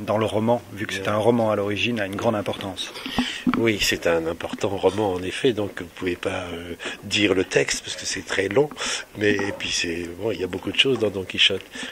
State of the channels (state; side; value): identical; both; correlation 1.00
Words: dans le roman, vu que c'est un roman à l'origine, a une grande importance. Oui, c'est un important roman en effet, donc vous ne pouvez pas dire le texte parce que c'est très long, mais et puis il y a beaucoup de choses dans Don Quichotte.